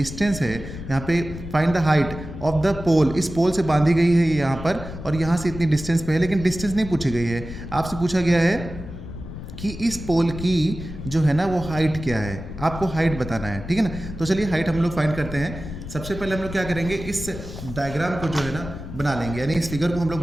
है, यहाँ पे find the height of the pole, इस पोल से बांधी गई है ये यहाँ पर, और यहाँ से इतनी डिस्टेंस पे है, लेकिन डिस्टेंस नहीं पूछी गई है। आपसे पूछा गया है कि इस पोल की जो है ना वो हाइट क्या है, आपको हाइट बताना है, ठीक है ना। तो चलिए हाइट हम लोग फाइंड करते हैं। सबसे पहले हम लोग क्या करेंगे, इस डायग्राम को जो है ना बना लेंगे, यानी इस फिगर को हम लोग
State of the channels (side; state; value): left; noise; rumble, 10 dB below the sound